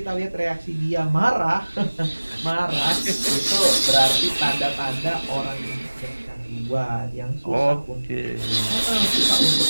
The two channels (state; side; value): inverted; both; correlation -1.00